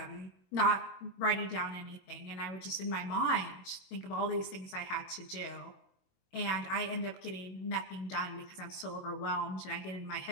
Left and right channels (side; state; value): right; late; 22 ms